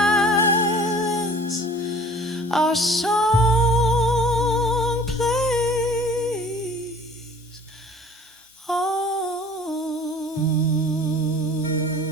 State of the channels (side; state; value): both; normal; correlation 0.49